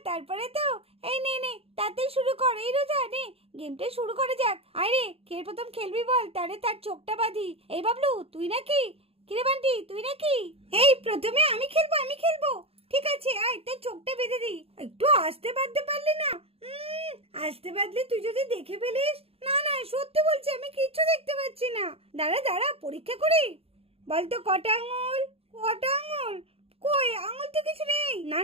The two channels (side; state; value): left; late; 0.28 ms